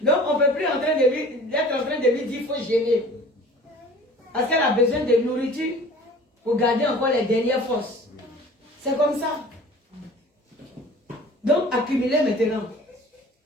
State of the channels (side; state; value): both; normal; correlation 0.45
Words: Donc, on ne peut plus être en train de lui dire, il faut jeûner. Parce qu'elle a besoin de nourriture pour garder encore les dernières forces. C'est comme ça. Donc, accumulez maintenant.